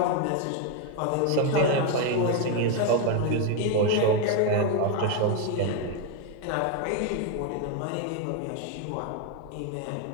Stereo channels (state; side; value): different; both; correlation 0.01